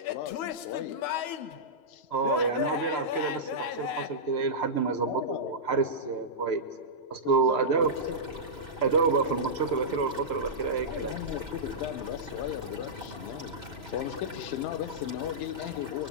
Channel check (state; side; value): late; right; 3.0 ms